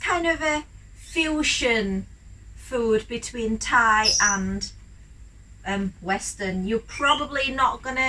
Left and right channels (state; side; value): identical; both; correlation 1.00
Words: of a fusion food between Thai and Western. You're probably not